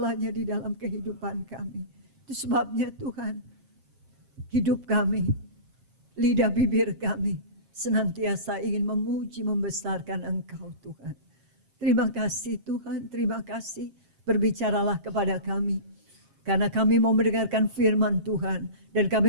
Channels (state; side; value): late; left; 7.0 ms